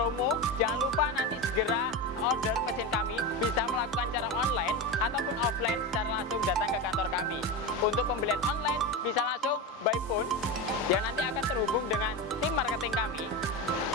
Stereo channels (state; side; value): normal; both; correlation 0.20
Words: jangan lupa nanti segera order mesin kami, bisa melakukan cara online ataupun offline secara langsung datang ke kantor kami. Untuk pembelian online bisa langsung by phone yang nanti akan terhubung dengan tim marketing kami,